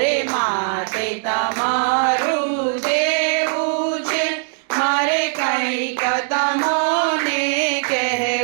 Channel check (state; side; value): silent; left; 61 dB below the other